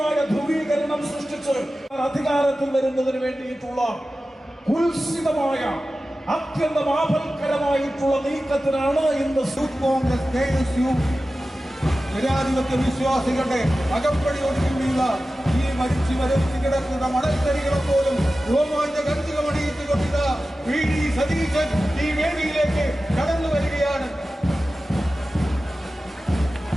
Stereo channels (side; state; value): both; normal; correlation 0.95